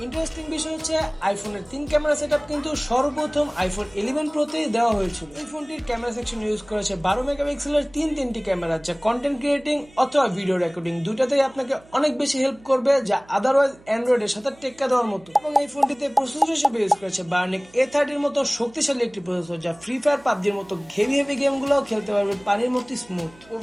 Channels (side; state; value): right; noise; hum, 26 dB below the sound